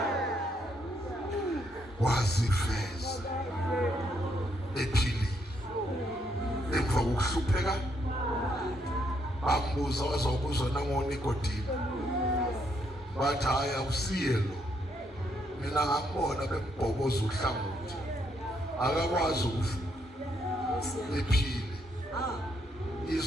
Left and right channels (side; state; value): both; normal; correlation 0.74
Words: Wazifeza ephilile emva kokuhlupheka, bambuza wazokuzwa nangoNikodimo, bathi hayi awusiye lo, mina ngambona bembhokoza uhlangothi, akakwazi ukuvuka ephile.